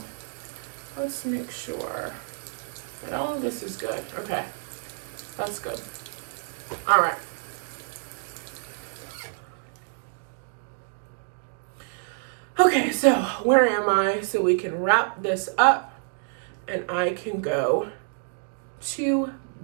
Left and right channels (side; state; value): left; silent; digital silence